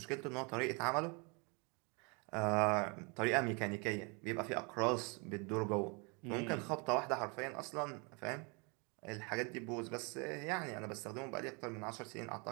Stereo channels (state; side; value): quieter; left; 32.3 dB